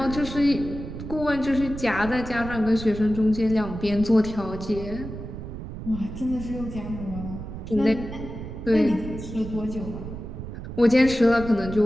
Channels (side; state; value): right; noise; rumble, 9 dB below the sound